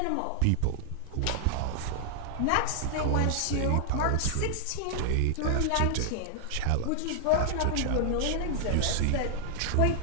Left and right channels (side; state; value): both; different; correlation -0.01